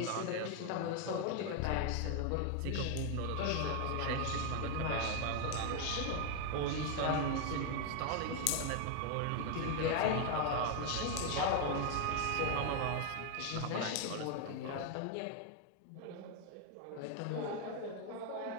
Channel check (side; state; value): both; different; correlation 0.00